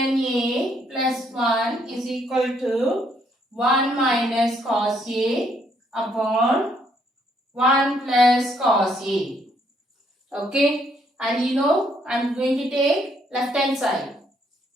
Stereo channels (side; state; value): both; normal; correlation 0.70